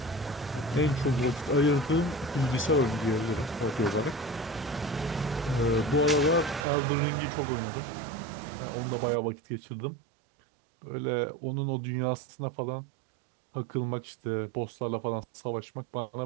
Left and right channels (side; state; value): left; drops out; at 6.7 s